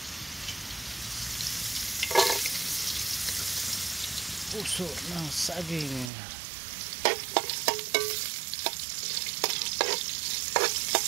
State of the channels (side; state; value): left; drops out; at 6.1 s